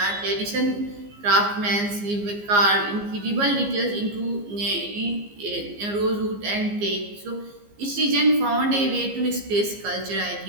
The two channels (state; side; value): late; left; 15 ms